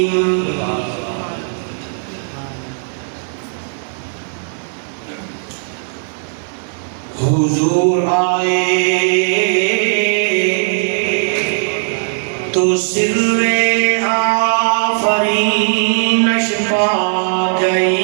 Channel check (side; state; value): left; silent; 56 dB below the other